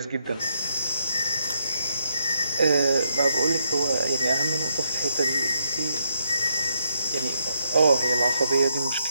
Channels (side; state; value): both; inverted; correlation -0.79